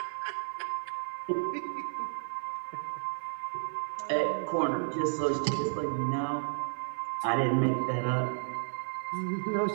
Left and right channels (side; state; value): left; silent; 56 dB below the other